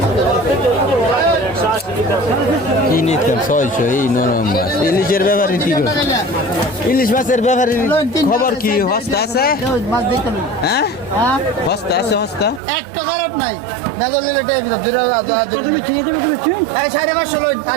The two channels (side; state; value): left; drops out; at 12.6 s